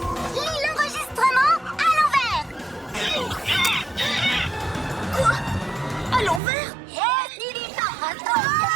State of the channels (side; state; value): left; drops out; at 6.4 s